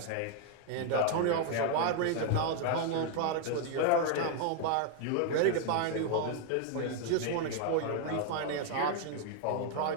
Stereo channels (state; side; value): different; both; correlation 0.00